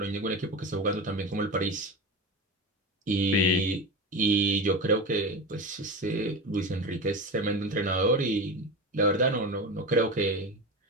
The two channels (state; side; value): normal; both; correlation 0.25